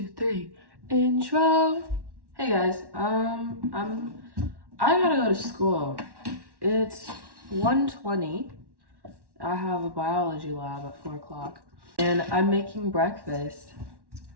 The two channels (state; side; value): late; left; 1.1 ms